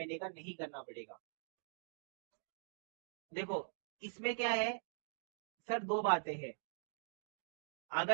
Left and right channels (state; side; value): silent; left; digital silence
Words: का नहीं करना पड़ेगा। देखो इसमें क्या है सर, दो बातें हैं।